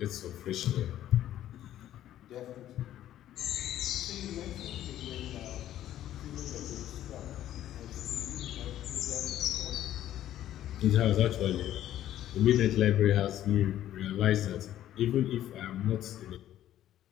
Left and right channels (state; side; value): quieter; right; 12.3 dB